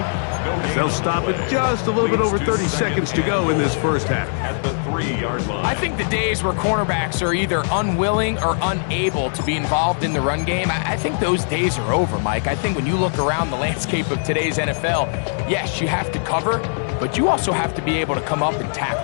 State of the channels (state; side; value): silent; right; digital silence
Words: as they'll stop at just a little bit over 30 seconds to go in this first half. At the 3-yard line. I think the days where cornerbacks are either unwilling or unable to be involved in the run game, I think those days are over, Mike. I think when you look around the landscape of today's NFL, yes, you have to cover, but you also have to be able to come up and